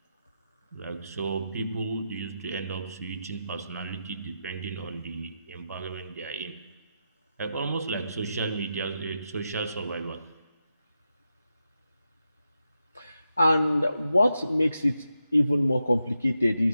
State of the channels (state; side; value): inverted; both; correlation -0.87